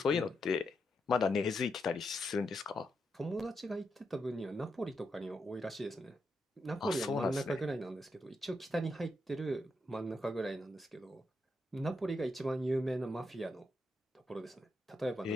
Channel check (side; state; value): both; normal; correlation 0.83